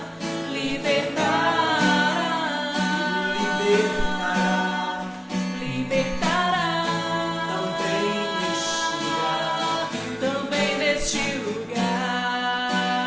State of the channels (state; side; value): identical; both; correlation 1.00